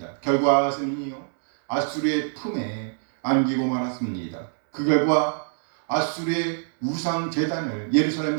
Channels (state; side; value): silent; left; digital silence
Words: 결과 아하스는요 아수리의 품에 안기고 말았습니다. 그 결과 아수리의 우상 제단을 예루살렘